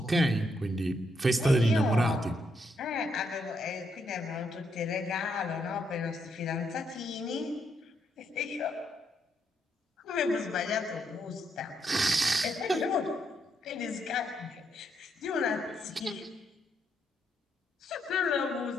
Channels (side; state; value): both; normal; correlation 0.77